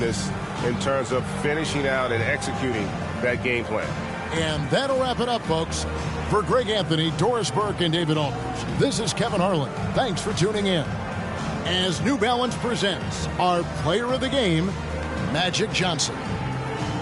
in terms of finishing out and executing that game plan. And that'll wrap it up, folks. For Greg Anthony, Doris Burke, and David Aldridge, this is Kevin Harlan. Thanks for tuning in. As New Balance presents our player of the game, Magic Johnson.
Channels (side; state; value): both; identical; correlation 1.00